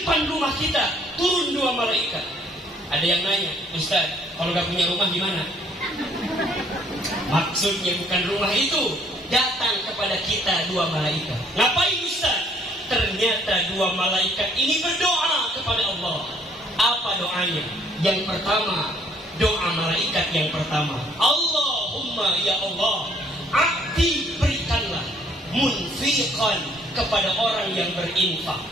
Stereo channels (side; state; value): both; normal; correlation 0.62